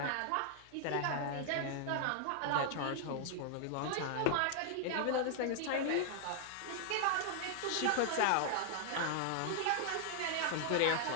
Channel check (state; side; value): different; both; correlation -0.01